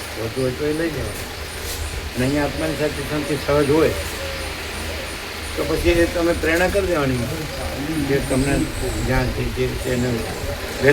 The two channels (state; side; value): identical; both; correlation 1.00